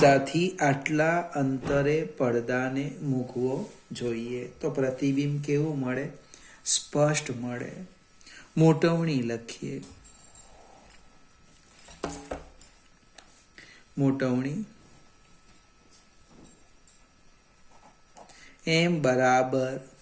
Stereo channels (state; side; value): identical; both; correlation 1.00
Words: આટલા અંતરે પડદાને મૂકવો જોઈએ. તો પ્રતિબિંબ કેવું મળે? સ્પષ્ટ મળે. મોટવણી લખીએ. મોટવણી m બરાબર